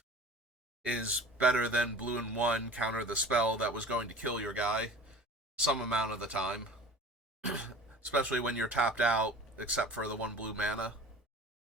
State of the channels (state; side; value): normal; both; correlation 0.41